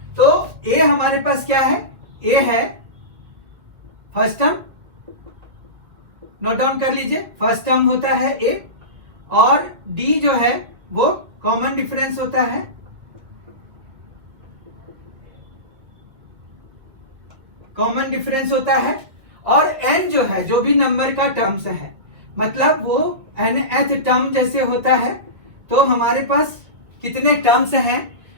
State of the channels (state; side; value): late; left; 1.6 ms